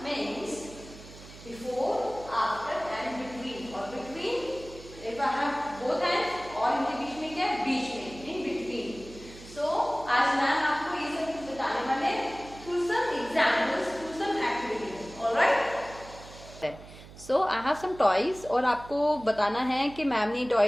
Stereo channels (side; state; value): right; noise; hum, 18 dB below the sound